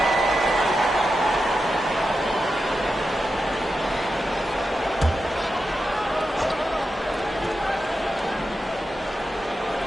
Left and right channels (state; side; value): normal; both; correlation 0.89